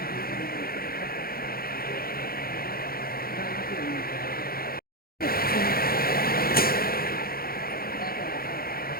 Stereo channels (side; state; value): right; late; 0.43 ms